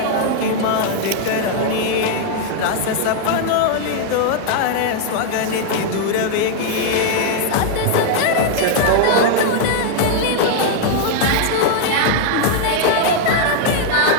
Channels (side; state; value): both; different; correlation 0.00